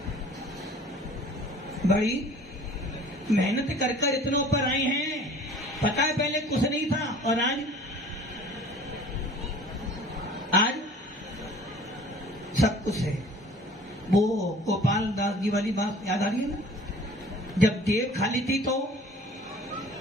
बड़ी मेहनत कर इतना ऊपर आए हैं। पता है पहले कुछ नहीं था और आज सब कुछ है। वो गोपाल दास जी वाली बात याद आ रही है ना, जब जेब खाली थी तो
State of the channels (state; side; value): normal; both; correlation 0.48